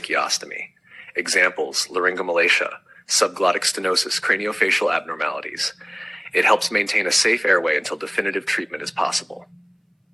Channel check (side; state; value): both; identical; correlation 1.00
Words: Examples: laryngomalacia, subglottic stenosis, craniofacial abnormalities. It helps maintain a safe airway until definitive treatment is possible.